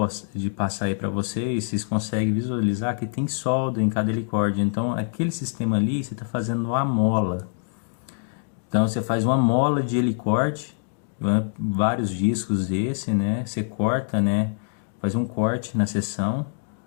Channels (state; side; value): silent; right; digital silence